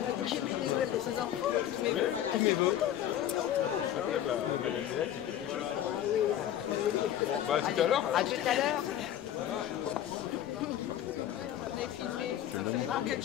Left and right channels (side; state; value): right; quieter; 11.2 dB